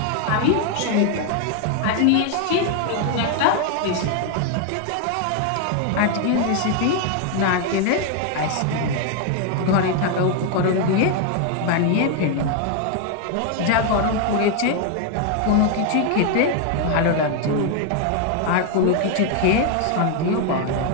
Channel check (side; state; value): both; different; correlation 0.01